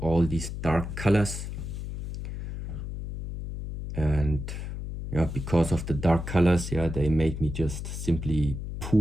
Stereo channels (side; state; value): left; noise; hum, 7 dB below the sound